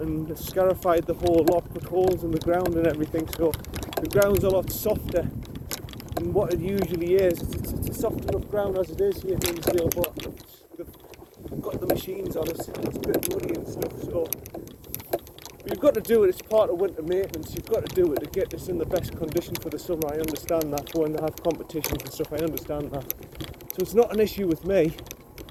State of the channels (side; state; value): both; identical; correlation 1.00